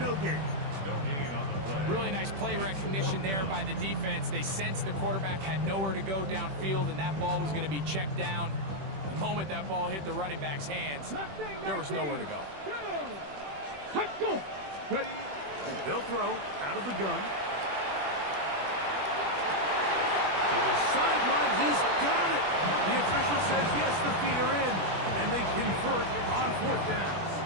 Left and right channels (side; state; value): left; late; 21 ms